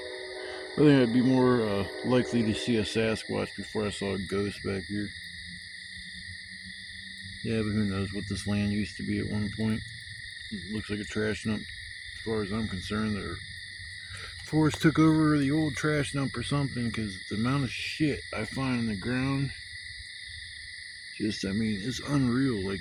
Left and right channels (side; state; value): both; identical; correlation 1.00